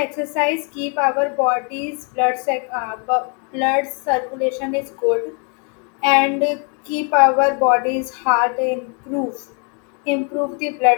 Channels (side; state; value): right; quieter; 36.7 dB